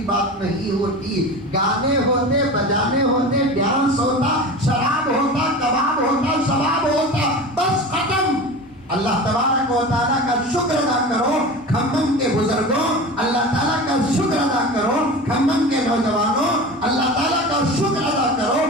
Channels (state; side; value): normal; both; correlation 0.32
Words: نہیں ہوتی. گانے ہوتے, بجانے ہوتے, ڈانس ہوتا, شراب ہوتا, کباب ہوتا, شباب ہوتا, بس ختم. اللہ تبارک و تعالیٰ کا شکر ادا کرو کھمم کے بزرگوں, اللہ تعالیٰ کا شکر ادا کرو کھمم کے نوجوانوں, اللہ تعالیٰ کا شکر ادا کرو